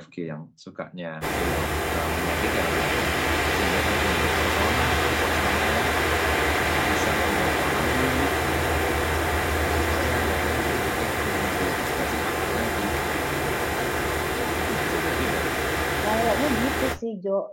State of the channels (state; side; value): identical; both; correlation 1.00